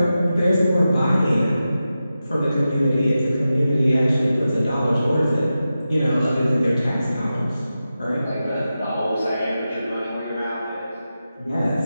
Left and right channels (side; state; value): both; inverted; correlation -0.92